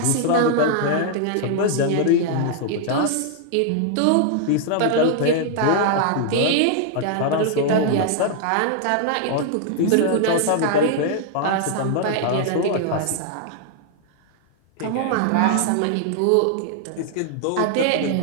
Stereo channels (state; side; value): different; both; correlation 0.00